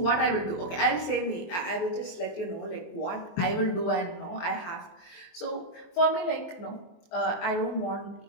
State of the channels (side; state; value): right; late; 23 ms